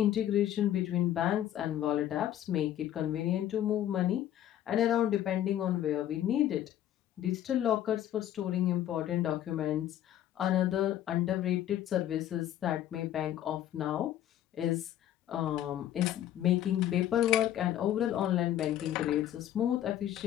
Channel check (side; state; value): right; quieter; 11.7 dB